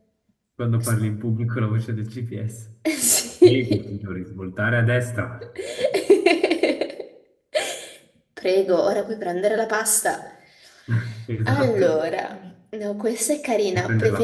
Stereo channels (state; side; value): identical; both; correlation 1.00